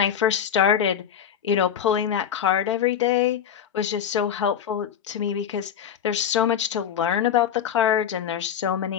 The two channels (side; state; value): right; quieter; 8.9 dB